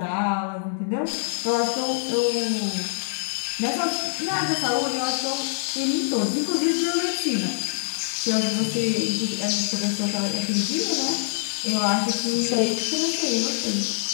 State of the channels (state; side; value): silent; right; digital silence